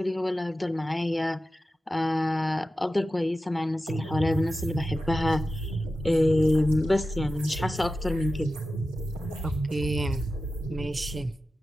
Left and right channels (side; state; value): both; normal; correlation 0.93